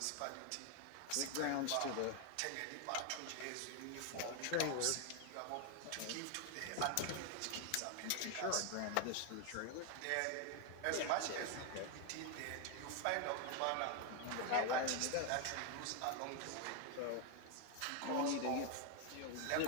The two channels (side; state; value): both; different; correlation 0.01